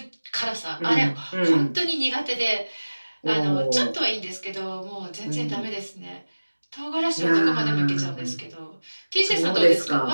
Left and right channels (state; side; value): inverted; both; correlation -1.00